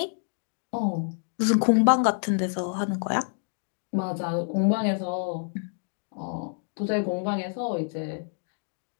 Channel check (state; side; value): silent; right; digital silence